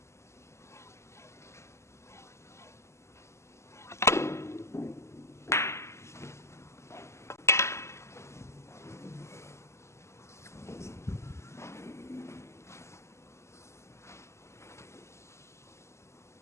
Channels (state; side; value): late; right; 0.13 ms